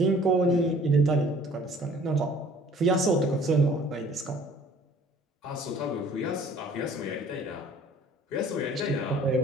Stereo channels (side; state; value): both; normal; correlation 0.53